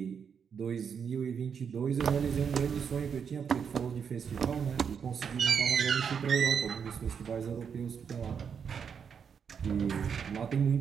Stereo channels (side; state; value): left; quieter; 6.9 dB